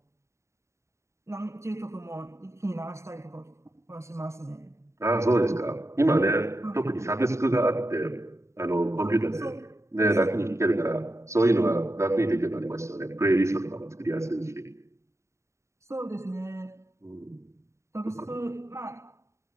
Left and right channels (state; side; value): late; left; 0.14 ms